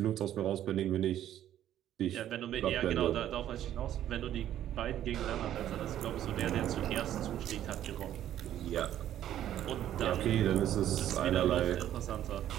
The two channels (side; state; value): left; quieter; 11.6 dB